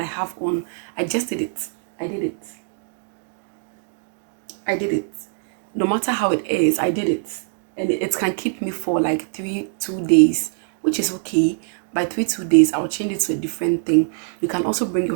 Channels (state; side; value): silent; left; digital silence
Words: have on, I just did it. I did it. I did it. No matter how it is, I did it. And it can keep me for like 2 days, which is okay. By 2 days, I'll change it to a different thing. You can also bring